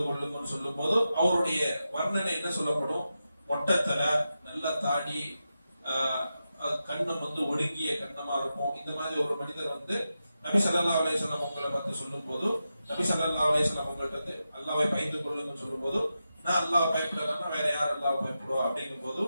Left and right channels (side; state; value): both; inverted; correlation -0.89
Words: கொள்ளுங்கன்னு சொல்லும் போது அவருடைய வர்ணனை என்ன சொல்லப்படும்? மொட்டத்தல, நல்ல தாடி, கண்ணம் வந்து ஒடுங்கிய கண்ணமா இருக்கும். இந்த மாதிரி ஒரு மனிதர் வந்து நபி ஸல்லல்லாஹு அலைஹி வஸல்லம் உங்களை பார்த்து சொல்லும் போது, நபி ஸல்லல்லாஹு அலைஹி வஸல்லம் உங்கள்ட்ட வந்து அல்லாஹ்வை பயந்து கொள்ளுங்கன்னு சொல்லும் போது, நான் அல்லாஹ் பயப்படலன்னா வேற யார் அல்லாஹ் பயப்படுவா அப்படிங்கும் போது,